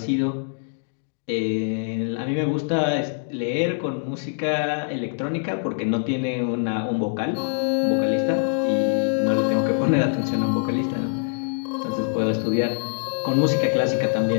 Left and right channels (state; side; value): silent; right; 63 dB below the other